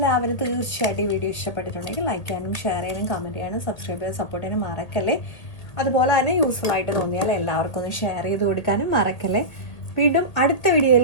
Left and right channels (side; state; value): right; late; 1.8 ms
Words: തീർച്ചയായിട്ടും ഈ വീഡിയോ ഇഷ്ടപ്പെട്ടിട്ടുണ്ടെങ്കിൽ ലൈക്ക് ചെയ്യാനും ഷെയർ ചെയ്യാനും കമൻറ്റ് ചെയ്യാനും സബ്സ്ക്രൈബ് ചെയ്യാനും സപ്പോർട്ട് ചെയ്യാനും മറക്കല്ലേ. അതുപോലെ തന്നെ യൂസ്ഫുൾ ആയിട്ട് തോന്നിയാൽ എല്ലാവർക്കും ഒന്ന് ഷെയർ ചെയ്ത് കൊടുക്കാനും മറക്കല്ലേ. വീണ്ടും അടുത്ത